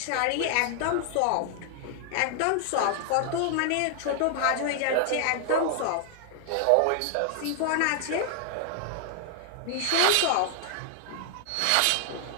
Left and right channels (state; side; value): different; both; correlation 0.00